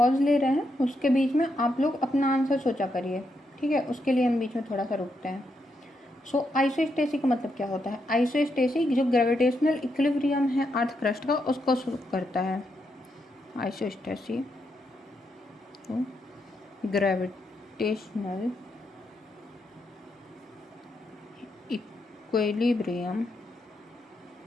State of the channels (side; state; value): both; normal; correlation 0.81